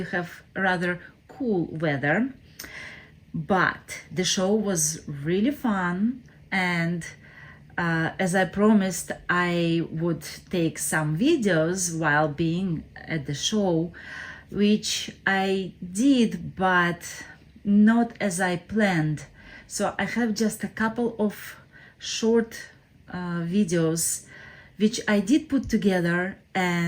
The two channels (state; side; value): identical; both; correlation 1.00